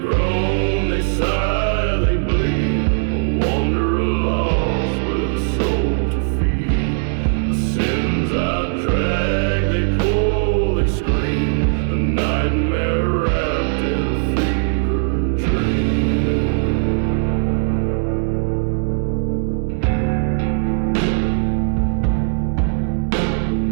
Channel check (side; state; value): left; silent; digital silence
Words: they sigh, they bleed. A wanderer lost with a soul to feed. The sins I drag, they pull, they scream. A nightmare wrapped in a fever dream.